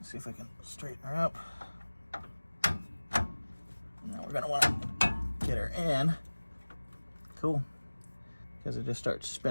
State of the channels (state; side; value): inverted; both; correlation -1.00